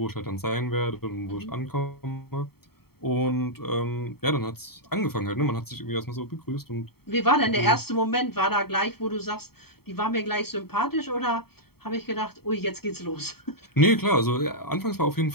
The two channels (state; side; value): late; right; 0.95 ms